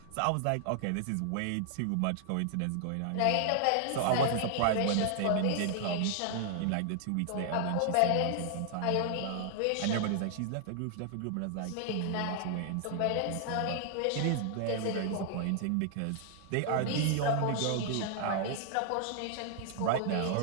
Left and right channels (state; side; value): different; both; correlation 0.00